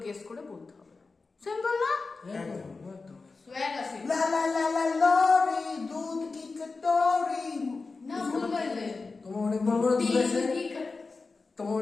গেস করে বলতে হবে। সিম্পল না? একদম একদম সোয়াগ আছে লা লা লা লা লরি দুধ কি কটোরি। না, ভুল বললে তোমার অনেক বড় বড় দুধ আছে, তোমার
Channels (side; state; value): right; quieter; 4.0 dB